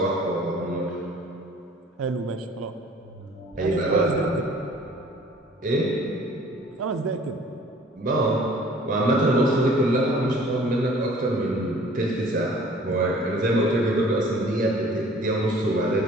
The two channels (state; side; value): normal; both; correlation 0.52